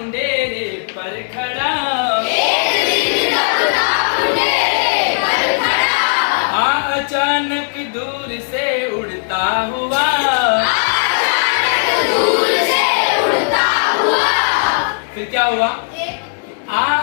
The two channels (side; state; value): right; silent; digital silence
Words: पर खड़ा, अचानक दूर से उड़ता हुआ, फिर क्या हुआ?